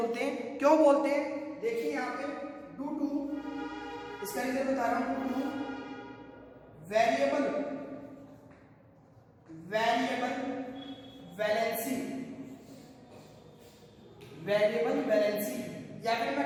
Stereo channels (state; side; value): identical; both; correlation 1.00